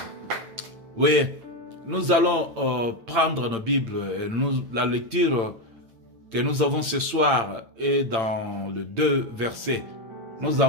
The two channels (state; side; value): late; left; 8.8 ms